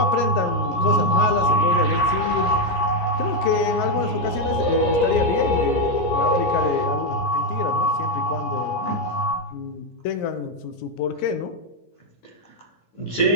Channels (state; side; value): late; right; 17 ms